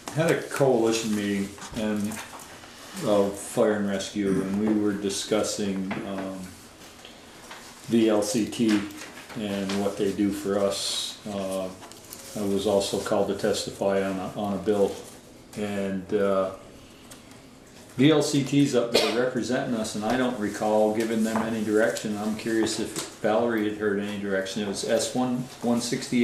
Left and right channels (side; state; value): both; identical; correlation 1.00